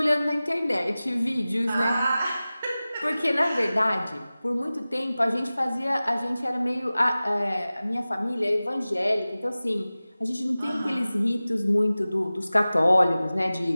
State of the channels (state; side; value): inverted; both; correlation -0.97